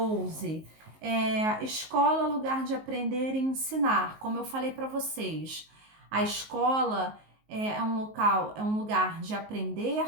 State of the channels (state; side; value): late; left; 19 ms